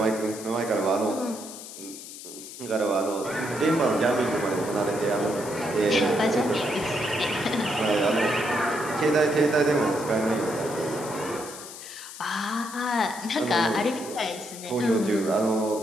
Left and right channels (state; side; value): noise; left; hiss, 13 dB below the sound